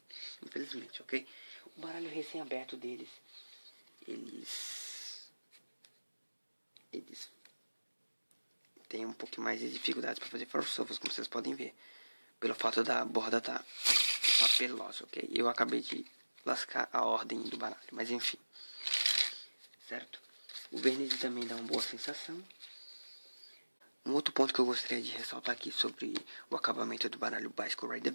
infelizmente, ok? O baralho recém-aberto deles, eles têm um pouco mais de dificuldades para fazer ferro shuffles, como vocês podem ver, pelo fato da borda tá papelosa, ok? Eu acabei de lascar a ordem do baralho, mas enfim, certo? O verniz também dá uma boa sensação. Um outro ponto que eu gostaria de ressaltar aqui sobre o acabamento do baralho Bicycle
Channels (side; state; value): both; inverted; correlation -1.00